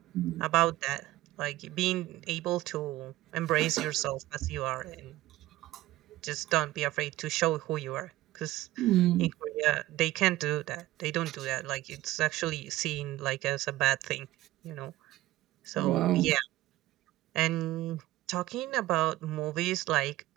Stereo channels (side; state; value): left; quieter; 16.4 dB